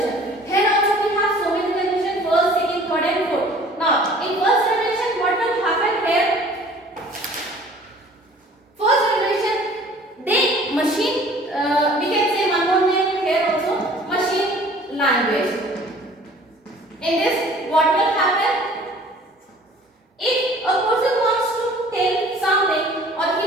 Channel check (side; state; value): both; normal; correlation 0.50